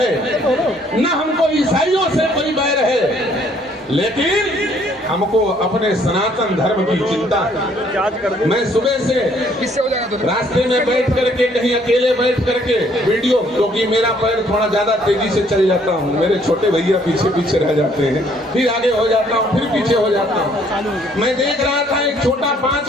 न हमको ईसाइयों से कोई बैर है, लेकिन हमको अपने सनातन धर्म की चिंता है। मैं सुबह से रास्ते में बैठ करके, कहीं अकेले बैठ करके वीडियो, क्योंकि मेरा पैर थोड़ा ज्यादा तेजी से चल जाता हूँ, मेरे छोटे भैया पीछे पीछे रह जाते हैं, फिर आगे हो जाता हूँ, फिर पीछे हो जाता हूँ। मैं देख रहा था एक छोटा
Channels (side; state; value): both; normal; correlation 0.64